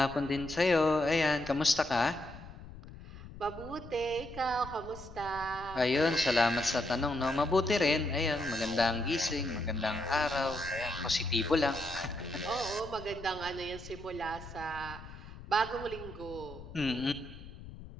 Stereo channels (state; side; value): noise; left; rumble, 15 dB below the sound